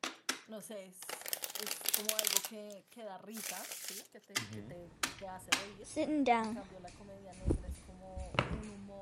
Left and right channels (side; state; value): both; identical; correlation 1.00